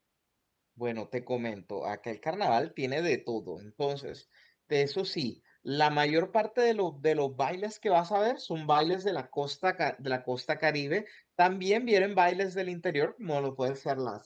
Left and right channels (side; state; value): both; identical; correlation 1.00